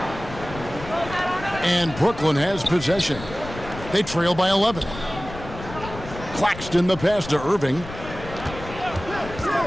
And Brooklyn has possession. They trail by 11. Claxton the pass to Irving.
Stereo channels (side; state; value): left; noise; rumble, 12 dB below the sound